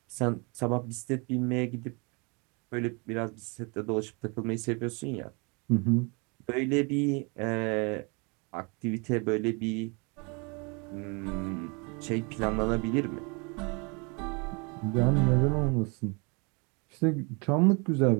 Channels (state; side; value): quieter; left; 31.4 dB